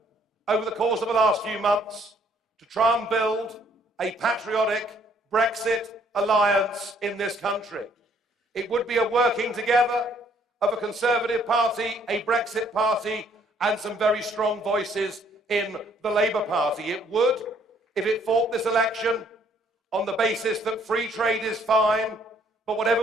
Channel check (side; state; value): both; normal; correlation 0.64